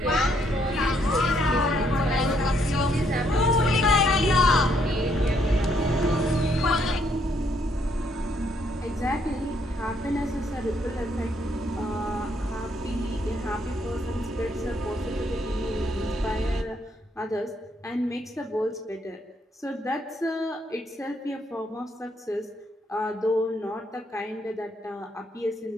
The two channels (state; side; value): normal; both; correlation 0.71